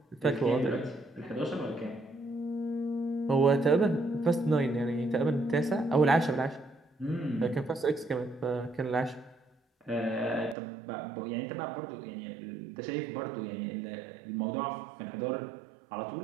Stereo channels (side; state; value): left; drops out; at 10.6 s